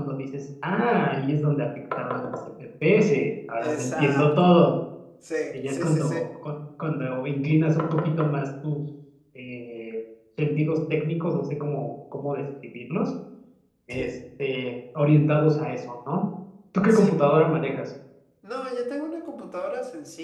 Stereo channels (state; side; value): identical; both; correlation 1.00